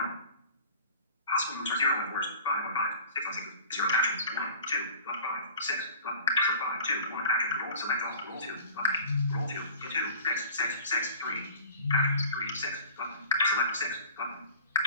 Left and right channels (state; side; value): inverted; both; correlation -0.43